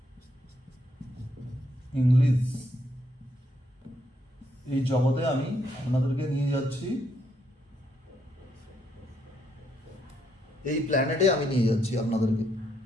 English, এই জগতে আমি আপনাদেরকে নিয়ে যাচ্ছি, এই প্ল্যানেটে আমি নিয়ে যাচ্ছি আপনাদেরকে,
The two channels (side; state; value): both; normal; correlation 0.74